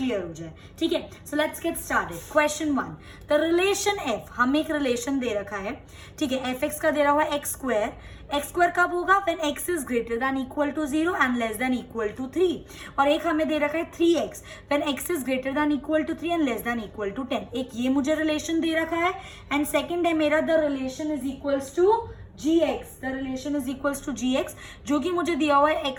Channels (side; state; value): both; identical; correlation 1.00